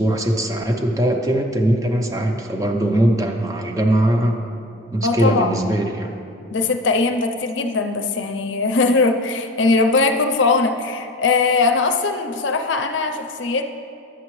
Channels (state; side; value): normal; both; correlation 0.36